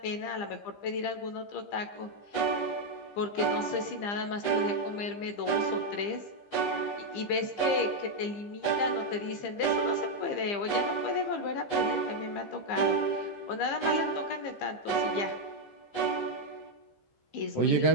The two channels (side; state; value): right; late; 15 ms